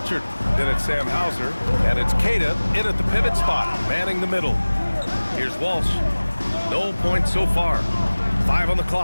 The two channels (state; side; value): inverted; both; correlation -1.00